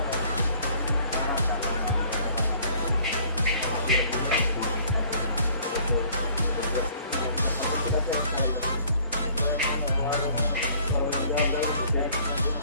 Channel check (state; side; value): inverted; both; correlation -0.56